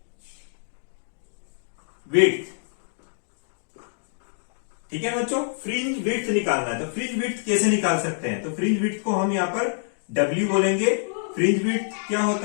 width, ठीक है बच्चों, फ्रिंज विड्थ निकालना है। तो फ्रिंज विड्थ कैसे निकाल सकते हैं, तो फ्रिंज विड्थ को हम यहां पर W बोलेंगे। फ्रिंज विड्थ क्या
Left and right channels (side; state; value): right; silent; digital silence